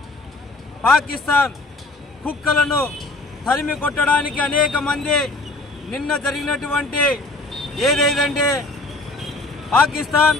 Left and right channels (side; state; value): right; quieter; 3.0 dB